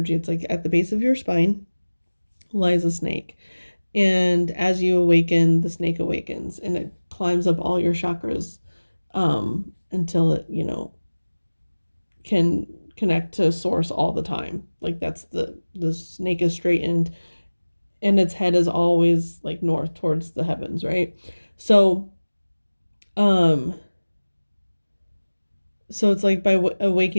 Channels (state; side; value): inverted; both; correlation -1.00